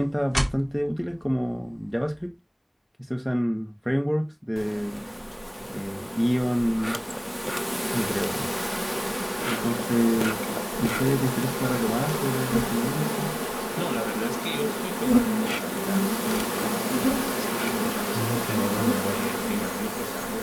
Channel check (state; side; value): identical; both; correlation 1.00